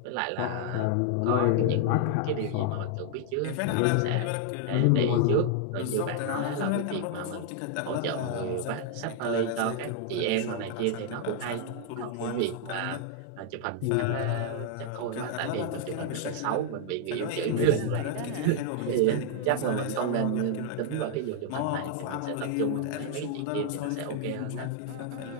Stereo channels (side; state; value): both; different; correlation 0.00